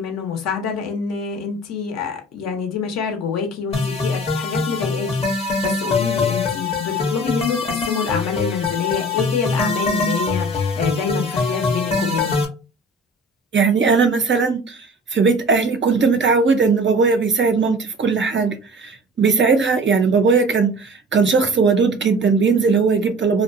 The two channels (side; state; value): both; normal; correlation 0.43